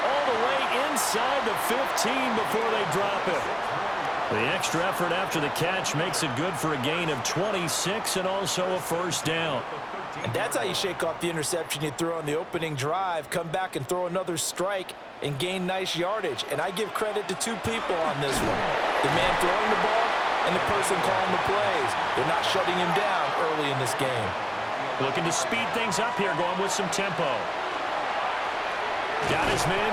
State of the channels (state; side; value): identical; both; correlation 1.00